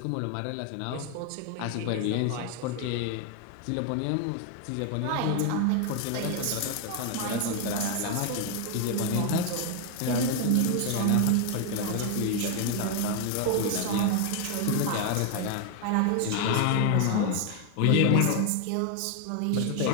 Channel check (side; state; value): both; different; correlation 0.01